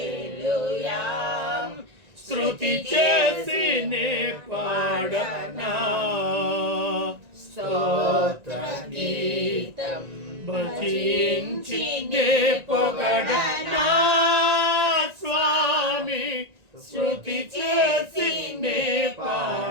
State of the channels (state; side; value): late; left; 1.9 ms